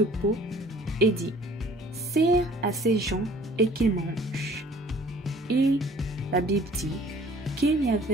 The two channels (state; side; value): normal; both; correlation 0.53